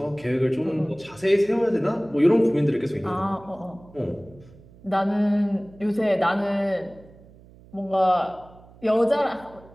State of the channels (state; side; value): noise; right; hum, 24 dB below the sound